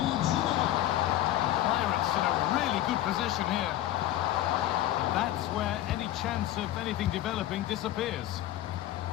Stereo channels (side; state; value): right; quieter; 13.7 dB